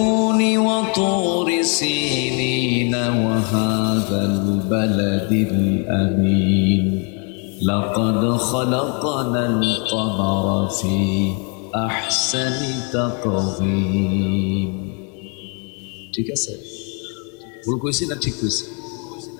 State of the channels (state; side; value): quieter; right; 37.0 dB